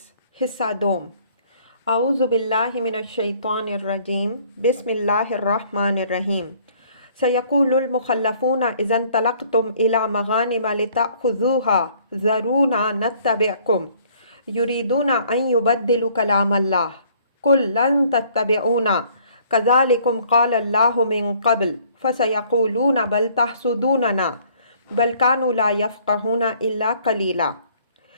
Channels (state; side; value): inverted; both; correlation -0.60